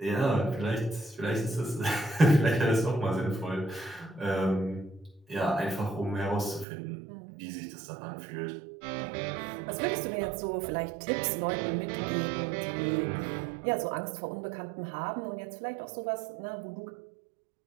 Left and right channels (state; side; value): drops out; left; at 6.7 s